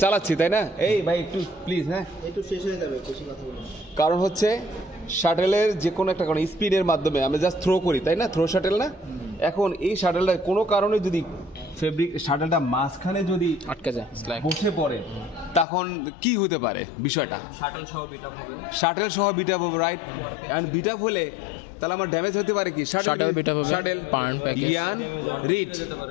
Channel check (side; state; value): right; drops out; at 15.7 s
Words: চালাচ্ছি, তাই না? এই ভাই একটু প্লিজ, হ্যাঁ একটু শেষ হয়ে যাবে, বেশি কথা বলুন। কারণ হচ্ছে শাটেলের যে কোনো একটা কারণ স্পিডের মাধ্যমে আমরা জাস্ট থ্রো করি, তাই না? থ্রো শাটেল না? এখন এই শাটেলটা কোনো কারণে যদি শাটেলটা মাঝখানে যদি আটকে যায়, বসে পড়ে, তখন কি হতে পারে বিষয়টা? শাটল সহ বিট আপ হবে, রাইট? এন্ড বিট আপ হলে তাহলে আমার ড্যামেজ হতে পারে কি? Shuttle yarn